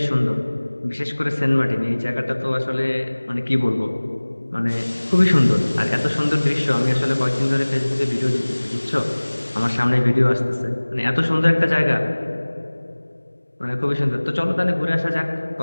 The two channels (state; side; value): inverted; both; correlation -1.00